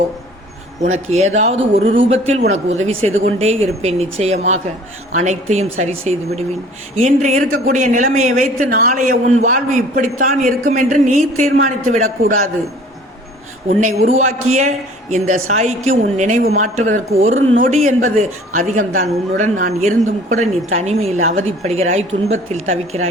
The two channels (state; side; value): normal; both; correlation 0.50